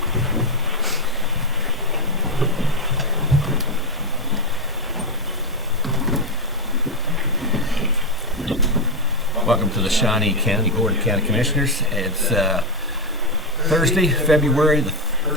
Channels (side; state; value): both; normal; correlation 0.05